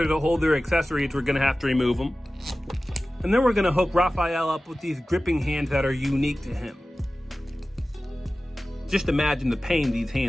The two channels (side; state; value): both; normal; correlation 0.96